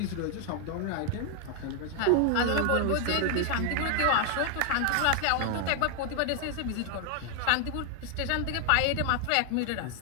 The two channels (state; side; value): different; both; correlation 0.00